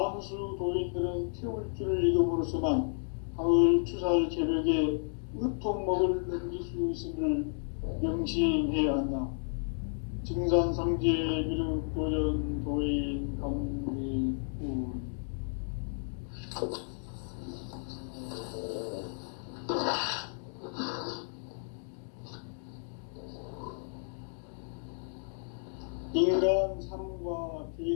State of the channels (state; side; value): silent; right; digital silence